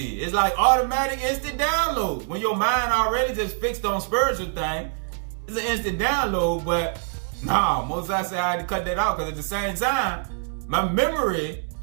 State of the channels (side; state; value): left; silent; digital silence